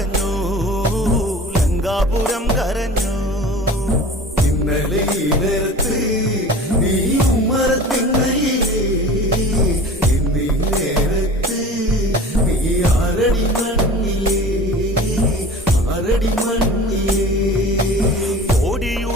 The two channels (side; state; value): both; normal; correlation 0.39